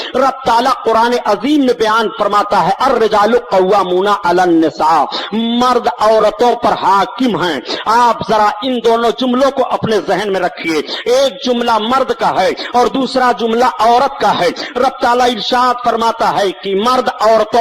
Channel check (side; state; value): both; identical; correlation 1.00